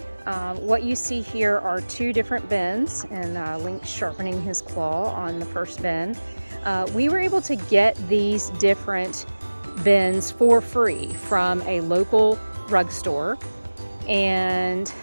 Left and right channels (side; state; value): both; inverted; correlation -1.00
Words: What you see here are two different bins, and Lynx sharpening his claw on the first bin. We were able to get these different bins for free from a local rug store, and